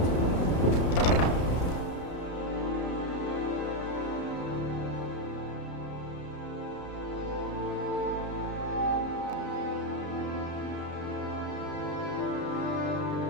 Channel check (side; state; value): right; late; 33 ms